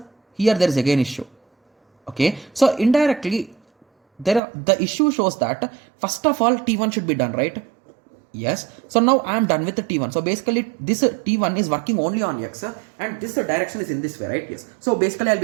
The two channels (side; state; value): left; drops out; at 4.4 s